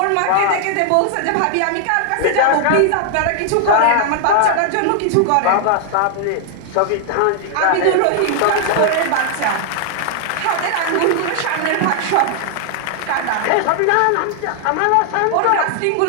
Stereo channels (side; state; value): both; different; correlation 0.00